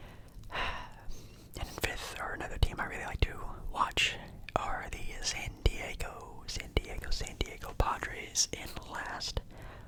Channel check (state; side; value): identical; both; correlation 1.00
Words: And in fifth, or another team I really like to watch, are the San Diego Padres in last.